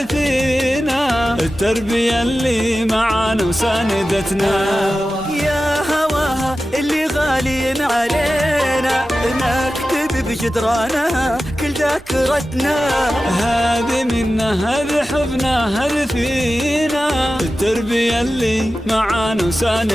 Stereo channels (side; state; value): right; noise; rumble, 23 dB below the sound